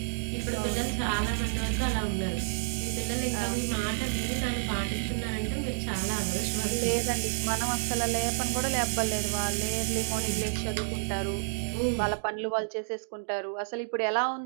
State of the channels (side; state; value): left; silent; digital silence